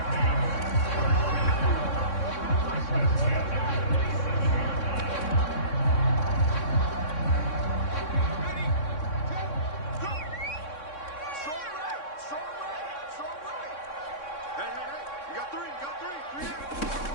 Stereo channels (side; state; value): right; late; 3.6 ms